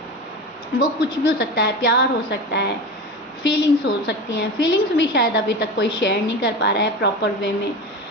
वो कुछ भी हो सकता है, प्यार हो सकता है, फीलिंग्स हो सकती हैं, फीलिंग्स भी शायद अभी तक कोई शेयर नहीं कर पा रहा है प्रॉपर वे में।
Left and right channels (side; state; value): both; normal; correlation 0.27